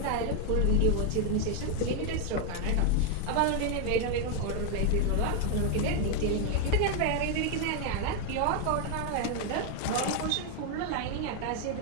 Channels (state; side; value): different; both; correlation 0.01